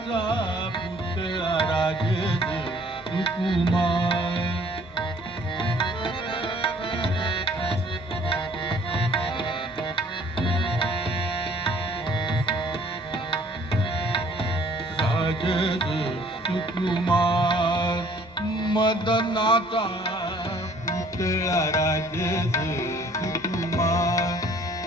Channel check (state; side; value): normal; both; correlation 0.57